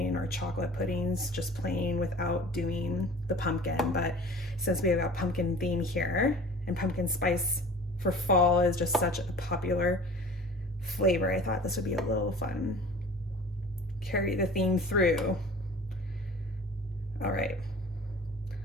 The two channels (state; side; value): normal; both; correlation 0.43